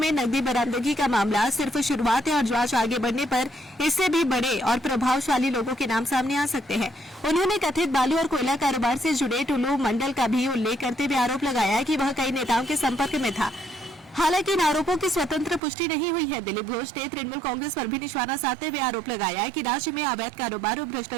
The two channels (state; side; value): drops out; left; at 15.6 s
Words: नकदी बरामदगी का मामला सिर्फ शुरुआत है और जांच आगे बढ़ने पर इससे भी बड़े और प्रभावशाली लोगों के नाम सामने आ सकते हैं। उन्होंने कथित बालू और कोयला कारोबार से जुड़े टुल्लू मंडल का भी उल्लेख करते हुए आरोप लगाया कि वह कई नेताओं के संपर्क में था। हालांकि इन आरोपों की स्वतंत्र पुष्टि नहीं हुई है। दिलीप घोष ने तृणमूल कांग्रेस पर भी निशाना साधते हुए आरोप लगाया कि राज्य में अवैध कारोबार और